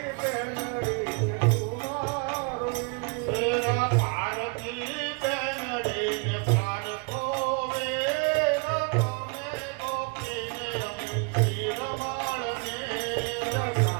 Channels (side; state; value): left; quieter; 34.0 dB